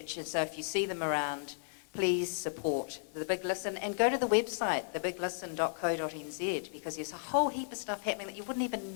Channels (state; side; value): silent; right; digital silence